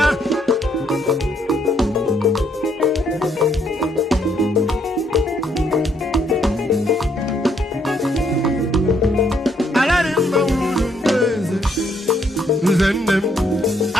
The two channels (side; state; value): both; normal; correlation 0.71